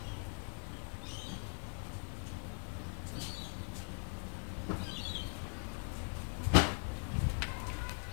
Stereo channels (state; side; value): silent; right; 51 dB below the other